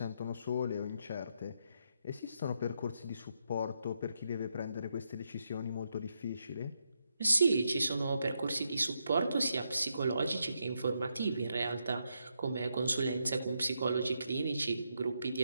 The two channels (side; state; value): both; inverted; correlation -0.81